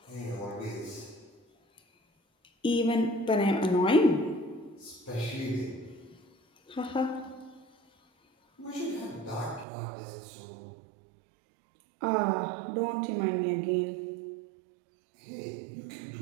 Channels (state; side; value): drops out; left; at 9.7 s